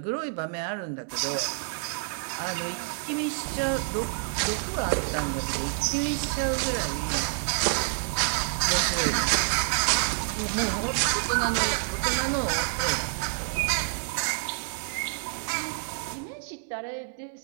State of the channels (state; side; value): silent; left; digital silence